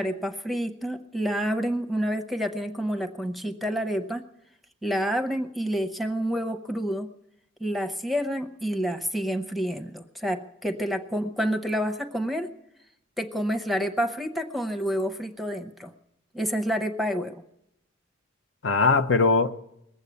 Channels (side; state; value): both; normal; correlation 0.53